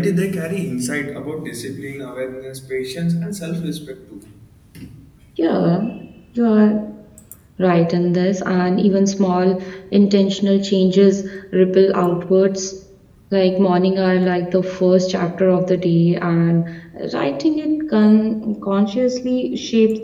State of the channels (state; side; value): identical; both; correlation 1.00